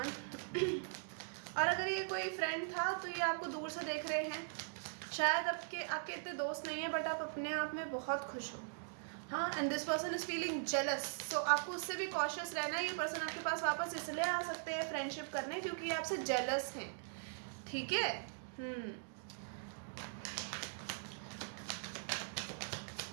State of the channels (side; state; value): left; silent; digital silence